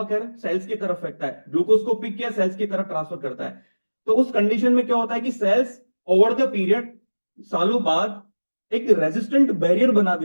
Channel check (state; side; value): inverted; both; correlation -1.00